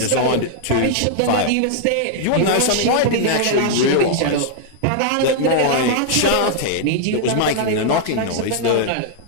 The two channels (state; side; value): different; both; correlation -0.01